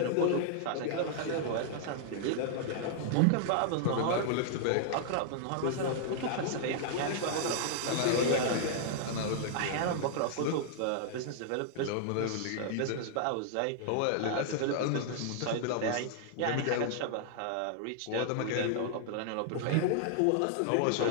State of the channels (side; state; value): both; different; correlation -0.01